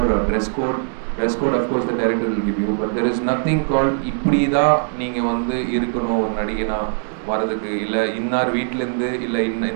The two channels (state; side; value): silent; left; 65 dB below the other